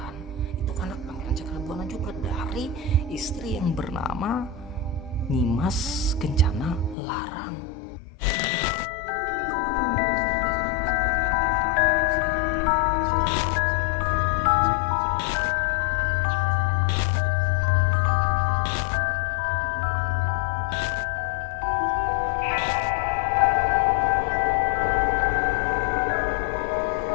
itu anak Pangeran Cakrabuana juga, dari istri yang bernama Nyimas Kencana Larang.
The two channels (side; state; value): right; drops out; at 7.0 s